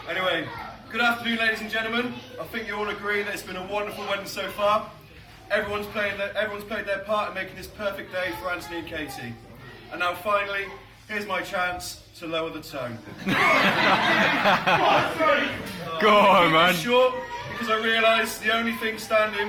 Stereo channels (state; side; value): identical; both; correlation 1.00